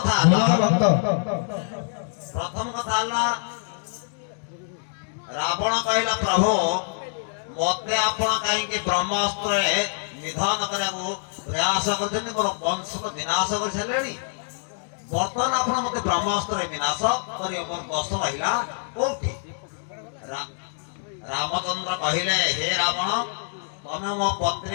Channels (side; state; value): right; silent; digital silence